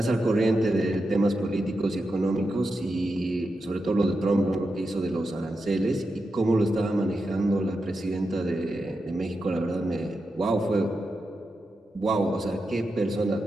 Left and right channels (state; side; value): normal; both; correlation 0.88